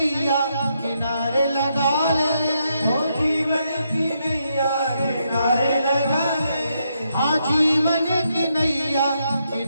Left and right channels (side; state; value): both; inverted; correlation -0.79